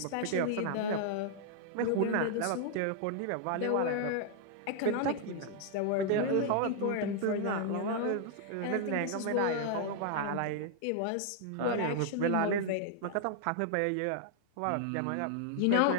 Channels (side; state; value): both; different; correlation -0.01